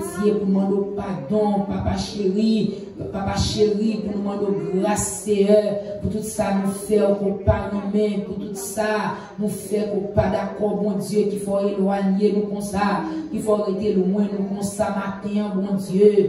pour demander pardon, papa chéri, pour nous demander grâce, pour tout ça nous faire qu'on pas nous-mêmes, pour tout ça nous faire qu'on pas d'accord, bon Dieu, qu'il faut éloigner nous comme ça, qu'il faut arrêter loin nous comme ça matin, bon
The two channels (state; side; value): identical; both; correlation 1.00